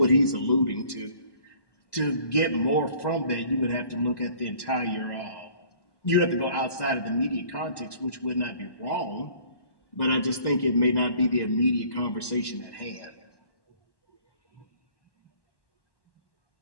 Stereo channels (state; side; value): late; right; 1.1 ms